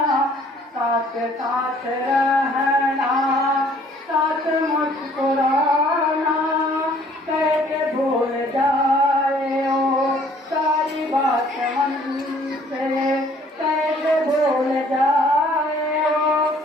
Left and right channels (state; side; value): normal; both; correlation 0.58